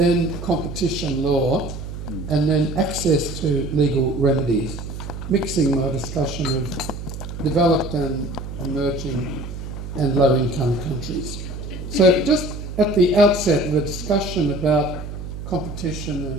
competition law, and then access to legal remedies, mixing my discussion of developed and emerging and low-income countries. So just at the outset of a discussion about competition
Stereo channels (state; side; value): noise; right; hum, 9 dB below the sound